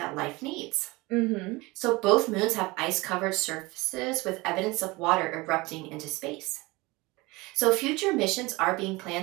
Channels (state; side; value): quieter; left; 22.9 dB